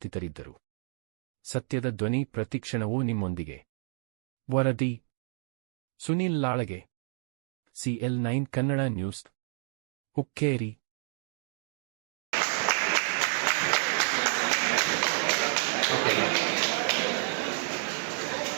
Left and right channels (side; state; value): left; silent; digital silence